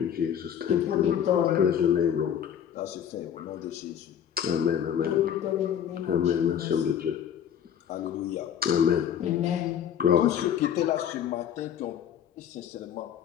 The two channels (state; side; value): quieter; right; 9.1 dB